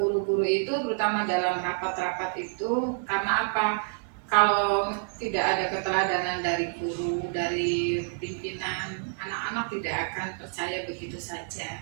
guru-guru itu terutama dalam rapat-rapat itu karena apa? Kalau tidak ada keteladanan dari guru, dari pimpinan, anak-anak tidak akan percaya begitu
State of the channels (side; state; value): left; silent; digital silence